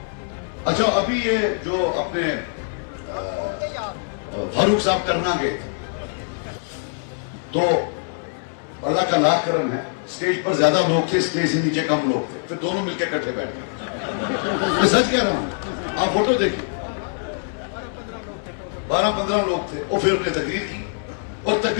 अच्छा अभी ये जो अपने फारूक साहब करना गए थे, तो अल्लाह का लाख करम है, स्टेज पर ज्यादा लोग थे, स्टेज से नीचे कम लोग थे, फिर दोनों मिलकर इकट्ठे बैठे। मैं सच कह रहा हूं, आप फोटो देखिए, 12-15 लोग थे। और फिर उन्होंने तकरीर की, और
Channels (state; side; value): silent; right; 63 dB below the other